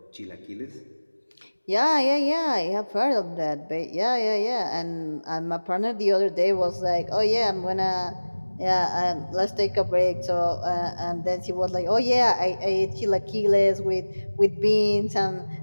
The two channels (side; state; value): both; inverted; correlation -1.00